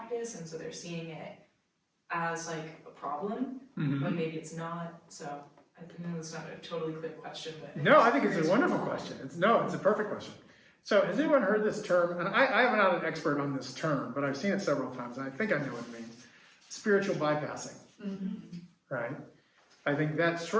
and so they're seeing it as like a problem, but maybe it's not. So I know it's not a totally clear question, but No, I think it's a wonderful question. It's a perfect question. So has anyone heard this term? And I'm not an expert on this term, but I've seen it several times and I think I know what it means. Spiritual bypassing. Right? I think that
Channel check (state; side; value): identical; both; correlation 1.00